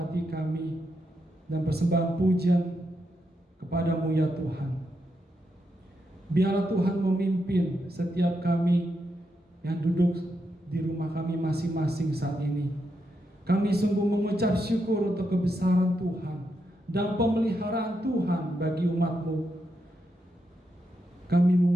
kami dan persembahan pujian kepada-Mu ya Tuhan. Biarlah Tuhan memimpin setiap kami yang duduk di rumah kami masing-masing saat ini. Kami sungguh mengucap syukur untuk kebesaran Tuhan dan pemeliharaan Tuhan bagi umat-Mu. Kami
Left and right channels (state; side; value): normal; both; correlation 0.83